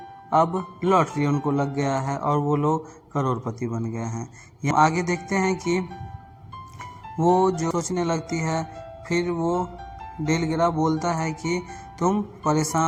अब लॉटरी उनको लग गया है और वो लोग करोड़पति बन गए हैं। यहाँ आगे देखते हैं कि वो जो सोचने लगती है, फिर वो डेलग्रा बोलता है कि तुम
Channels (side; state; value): both; identical; correlation 1.00